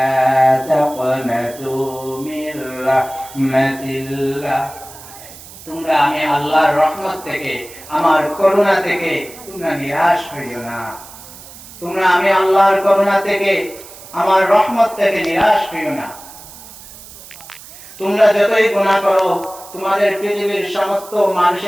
তাকনাতু মির রাহমাতিল্লাহ, তোমরা আমি আল্লাহর রহমত থেকে, আমার করুণা থেকে তোমরা নিরাশ হইও না। তোমরা আমি আল্লাহর করুণা থেকে, আমার রহমত থেকে নিরাশ হইও না। তোমরা যতই গুনাহ করো, তোমাদের পৃথিবীর সমস্ত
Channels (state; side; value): noise; right; hiss, 17 dB below the sound